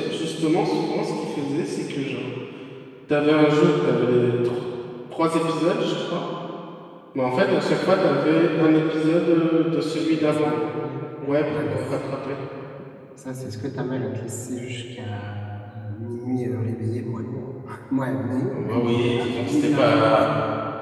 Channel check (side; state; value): both; identical; correlation 1.00